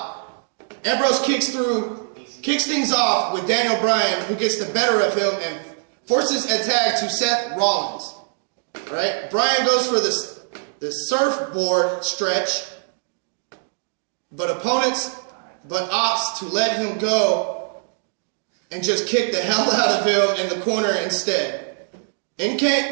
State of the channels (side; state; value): left; silent; digital silence